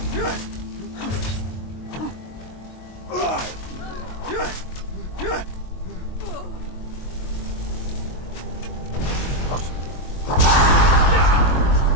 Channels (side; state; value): right; late; 22 ms